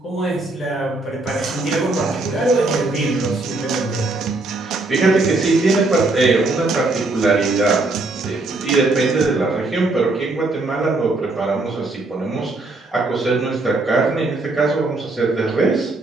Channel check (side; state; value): left; quieter; 3.1 dB